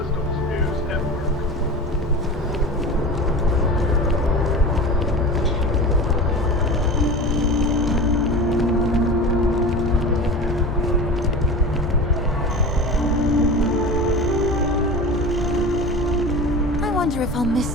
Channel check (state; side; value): normal; both; correlation 0.32